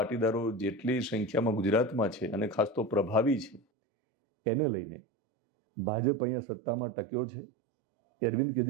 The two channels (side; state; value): left; drops out; at 3.6 s